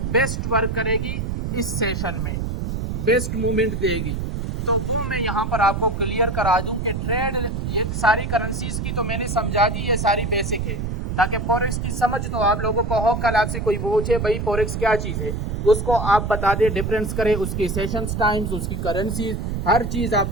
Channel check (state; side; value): noise; right; rumble, 2 dB below the sound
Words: बेस्ट वर्क करेगी इस सेशन में, बेस्ट मूवमेंट देगी। तो वो मैं यहाँ पर आपको क्लियर करा दूं कि ट्रेड, ये सारी करेंसीज की तो मैंने समझा दी, ये सारी बेसिक है, ताकि फॉरेक्स की समझ तो आप लोगों को हो। कल आपसे कोई पूछे भाई फॉरेक्स क्या चीज़ है, उसको आप बता दें, डिफरेंस करें, उसकी सेशंस टाइम्स, उसकी करेंसीज, हर चीज़